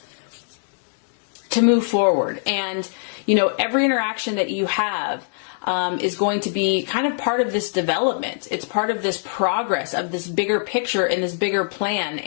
to move forward. And, you know, every interaction that you have is going to be kind of part of this development. It's part of this progress of this bigger picture and this bigger plan.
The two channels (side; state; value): right; silent; digital silence